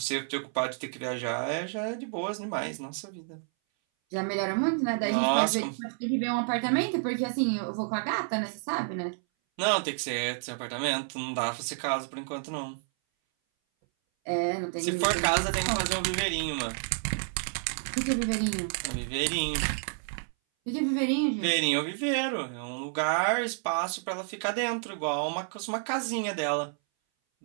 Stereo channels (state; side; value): silent; left; 58 dB below the other